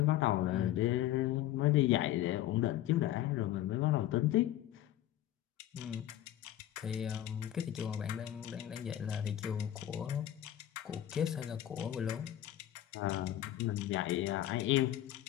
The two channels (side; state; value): right; quieter; 12.8 dB